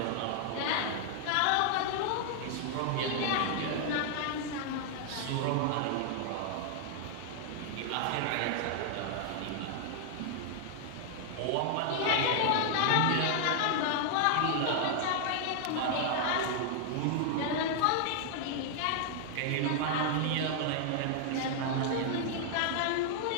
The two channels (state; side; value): different; both; correlation 0.00